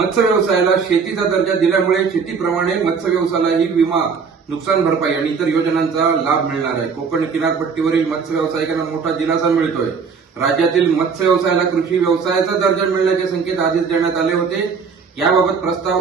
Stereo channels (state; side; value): quieter; left; 5.7 dB